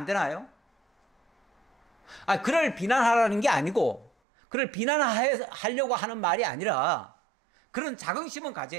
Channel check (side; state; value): left; drops out; at 4.1 s